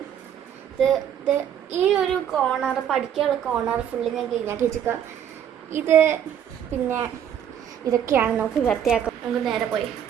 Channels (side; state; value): left; quieter; 9.4 dB